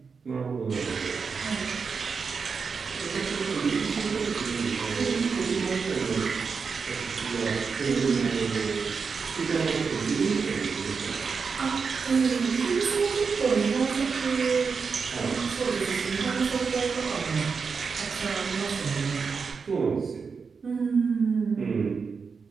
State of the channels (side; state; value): left; quieter; 5.4 dB